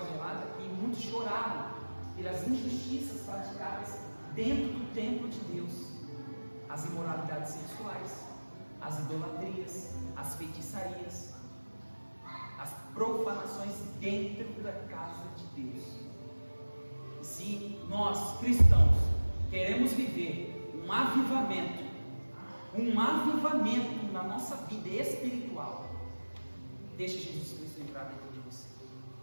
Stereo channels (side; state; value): both; inverted; correlation -1.00